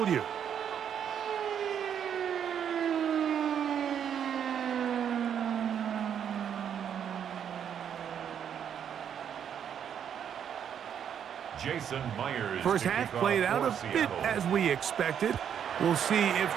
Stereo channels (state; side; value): quieter; left; 8.6 dB